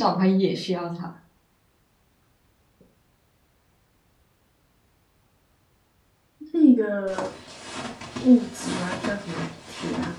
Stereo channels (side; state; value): both; identical; correlation 1.00